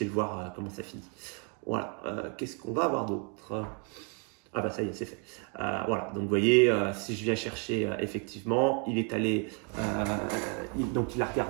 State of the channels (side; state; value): left; quieter; 37.2 dB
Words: le voir comment ça finit. Voilà, qu'est-ce qu'on va avoir d'autre? Ah bah ça y est, c'est fait. Voilà, donc vous voyez, si je viens chercher, effectivement, il est allé, donc il a